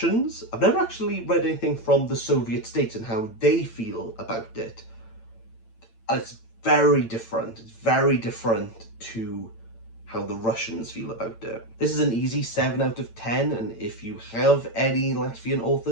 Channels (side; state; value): right; late; 8.9 ms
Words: I've never actually read anything from the Soviet states and how they feel about it. And it's very different. It's very different to how the Russians feel about it. This is an easy 7 out of 10, and if you have any Latvian